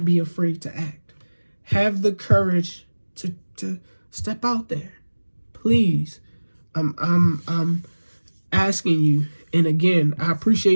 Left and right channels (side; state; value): both; inverted; correlation -1.00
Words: be afraid to act. Have the courage to step out there. Please. I'm asking you. And again, I